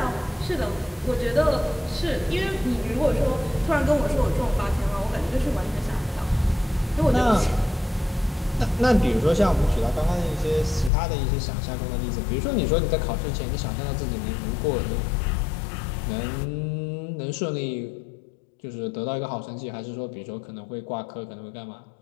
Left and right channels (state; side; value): drops out; right; at 10.9 s